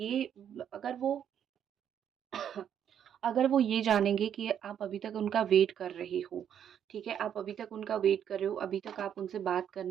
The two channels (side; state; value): left; quieter; 9.1 dB